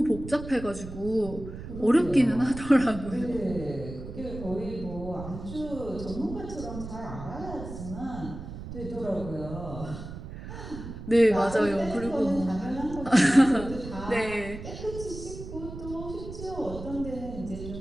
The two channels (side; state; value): right; noise; rumble, 10 dB below the sound